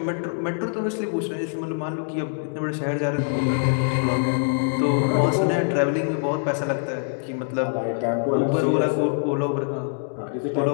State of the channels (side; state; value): right; silent; 63 dB below the other